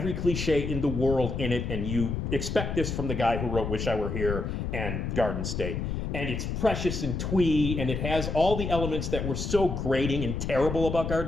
cliche in the world in it, and you expect this from the guy who wrote Wish I Were Here and Garden State. And it's precious and twee, and it has all the elements that were so grating and terrible about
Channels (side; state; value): left; noise; rumble, 3 dB below the sound